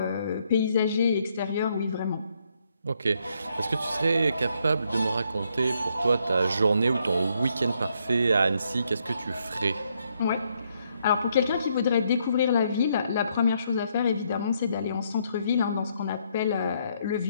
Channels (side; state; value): both; inverted; correlation -0.74